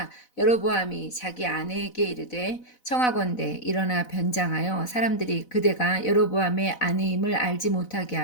여로보암이 자기 아내에게 이르되 청하건대 일어나 변장하여 사람들이 그대가 여로보암의 아내임을 알지 못하게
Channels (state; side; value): late; right; 4.0 ms